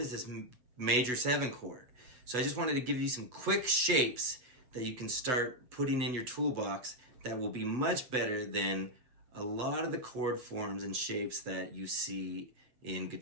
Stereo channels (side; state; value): left; late; 8.0 ms